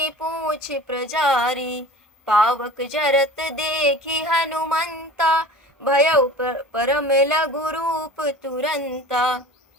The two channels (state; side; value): normal; both; correlation 0.39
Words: पूछ प्रजारी। पावक जरत देखि हनुमंता भयउ परम लघु रूप तुरंता।